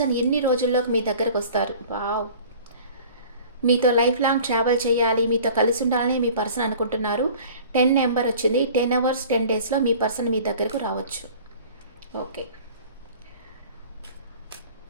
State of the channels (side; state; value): both; inverted; correlation -0.45